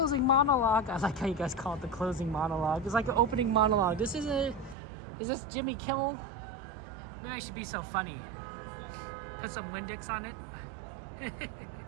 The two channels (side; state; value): left; drops out; at 4.8 s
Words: monologue. I like how you guys call it the closing monologue. It's like an opening monologue. Is this Jimmy Kimmel? Maybe I should be so funny. Put some Windex on it.